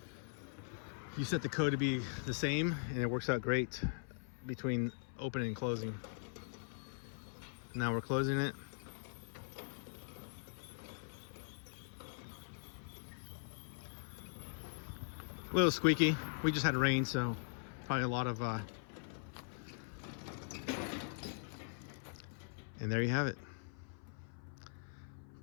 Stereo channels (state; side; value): silent; right; 50 dB below the other